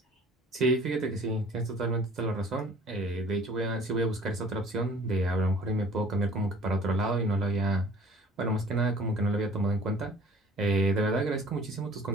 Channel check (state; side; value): normal; both; correlation 0.50